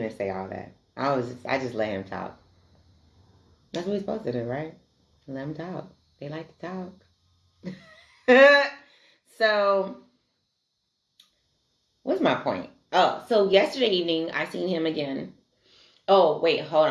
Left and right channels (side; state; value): both; identical; correlation 1.00